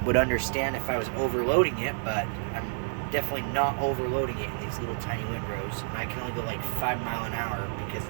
would understand if I was overloading it, but I'm definitely not overloading it in these little tiny windrows. And I can only go like 5 miles an hour because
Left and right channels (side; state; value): left; silent; 58 dB below the other